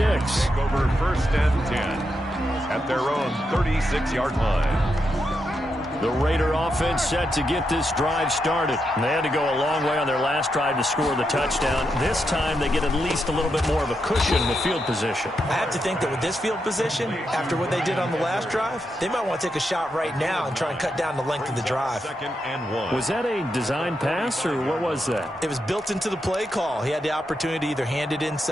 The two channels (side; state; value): both; normal; correlation 0.84